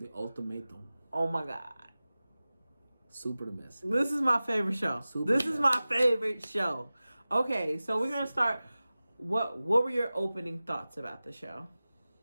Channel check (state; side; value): inverted; both; correlation -0.97